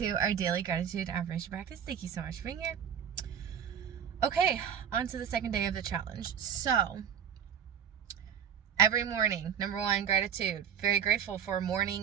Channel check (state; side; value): quieter; left; 8.4 dB